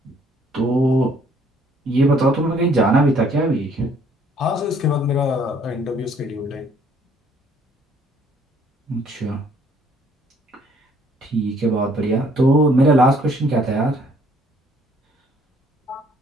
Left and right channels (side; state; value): both; normal; correlation 0.62